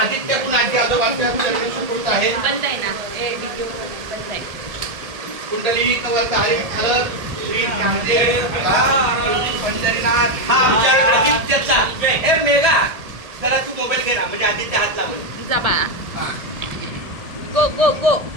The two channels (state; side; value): late; left; 1.7 ms